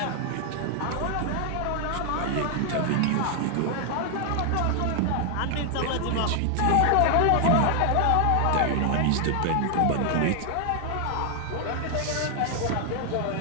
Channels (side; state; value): both; different; correlation 0.00